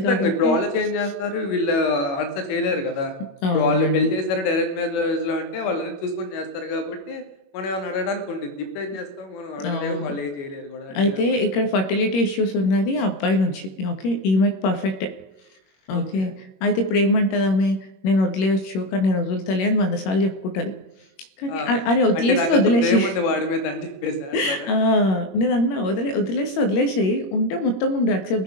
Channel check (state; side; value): late; right; 22 ms